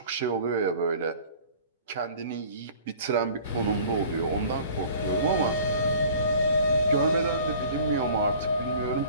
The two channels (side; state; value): both; inverted; correlation -0.48